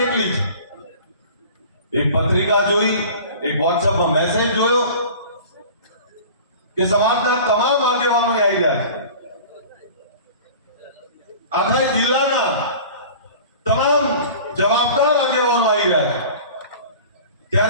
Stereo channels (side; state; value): both; inverted; correlation -0.41